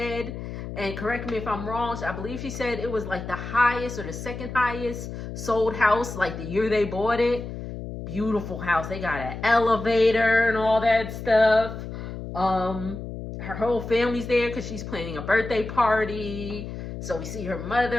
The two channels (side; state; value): left; noise; hum, 8 dB below the sound